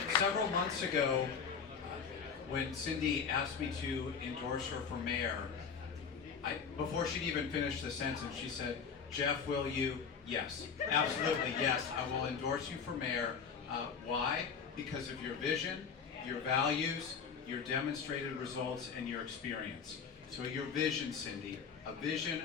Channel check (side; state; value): right; quieter; 6.3 dB